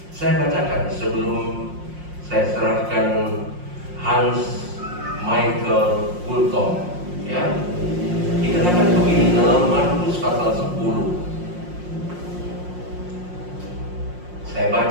Saya bacakan sebelum saya serahkan Hans Michael Fulton ya. Dikatakan begini dalam Markus pasal 10. Saya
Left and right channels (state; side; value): late; left; 5.6 ms